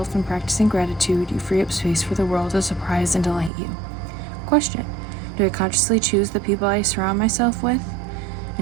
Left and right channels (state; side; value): drops out; left; at 3.5 s